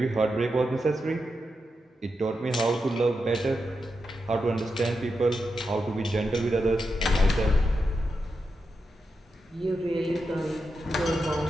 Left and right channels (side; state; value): both; normal; correlation 0.87